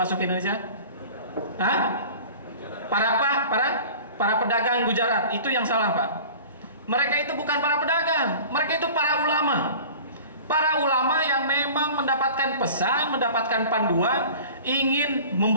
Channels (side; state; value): both; inverted; correlation -0.41